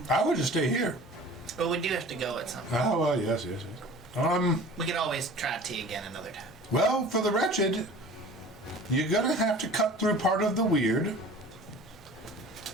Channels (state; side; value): normal; both; correlation 0.43